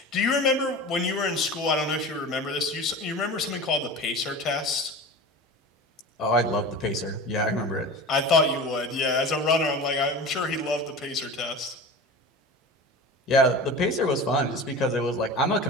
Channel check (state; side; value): normal; both; correlation 0.33